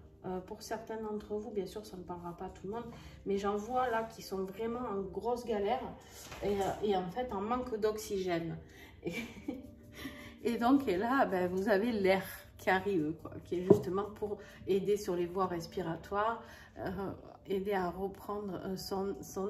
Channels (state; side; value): identical; both; correlation 1.00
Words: hein. Pour certains d'entre vous, bien sûr ça ne parlera pas à tout le monde, mais j'en vois là qui sont vraiment en grosse galère et en fait en manque d'oxygène. Et donc et là, ben, vous avez l'air qui arrive, quoi, qui est justement pour aider sur les voies respiratoires, aider à reprendre son